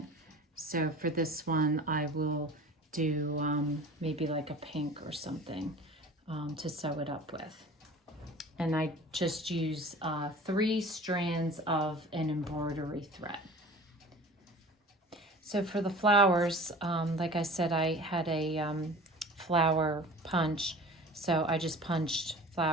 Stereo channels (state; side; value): normal; both; correlation 0.41